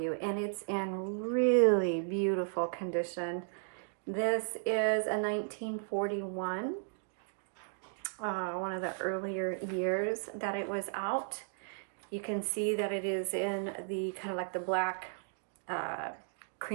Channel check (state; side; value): silent; left; digital silence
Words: and it's in really beautiful condition. This is a 1941, one of the earlier years that it was out. You can see that it is in the kind of like the black